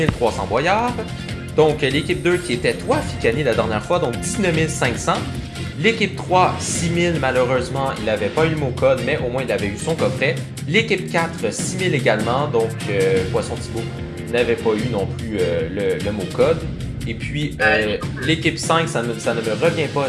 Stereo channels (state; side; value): identical; both; correlation 1.00